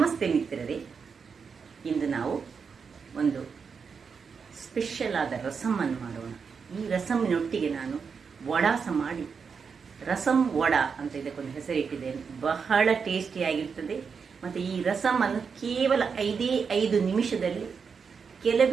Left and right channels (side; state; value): left; quieter; 5.8 dB